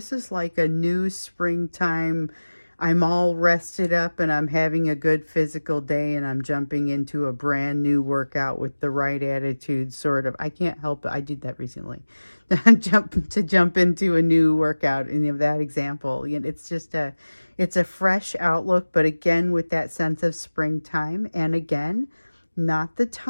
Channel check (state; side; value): inverted; both; correlation -1.00